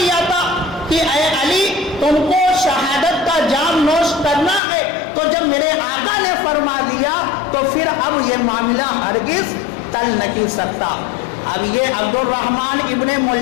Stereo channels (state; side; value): drops out; right; at 4.6 s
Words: تھا کہ اے علی، تم کو شہادت کا جام نوش کرنا ہے۔ تو جب میرے آقا نے فرما دیا تو پھر اب یہ معاملہ ہرگز ٹل نہیں سکتا۔ اب یہ عبد الرحمن ابن